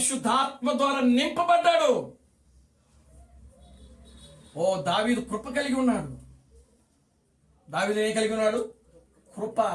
ద్వారా నింపబడ్డాడు. ఓ దావీదు కృప కలిగి ఉన్నాడు. దావీదు ఏం కలిగి ఉన్నాడు? కృప,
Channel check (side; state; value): both; identical; correlation 1.00